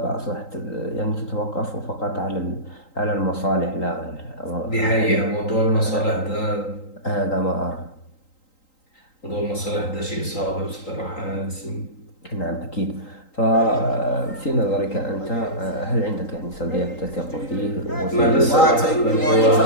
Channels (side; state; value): right; late; 3.9 ms